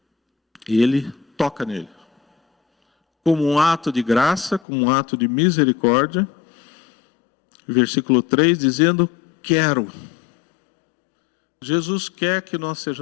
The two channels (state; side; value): drops out; right; at 4.6 s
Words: ele toca nele. Como um ato de graça, como um ato de misericórdia. Versículo 3, dizendo, quero. Jesus quer que nós